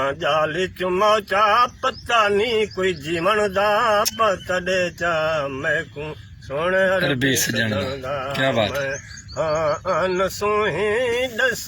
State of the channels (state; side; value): identical; both; correlation 1.00